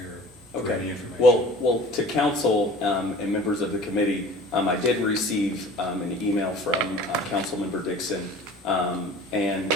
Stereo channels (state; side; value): normal; both; correlation 0.44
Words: for any information. Well, to council and members of the committee, I did receive an email from Councilmember Dixon, and